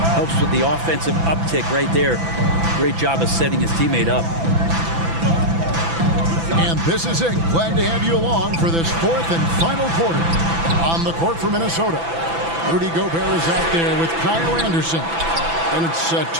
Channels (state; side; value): late; left; 6.0 ms